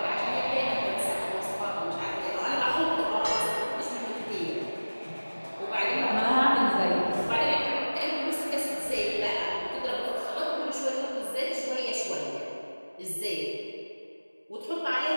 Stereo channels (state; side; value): inverted; both; correlation -1.00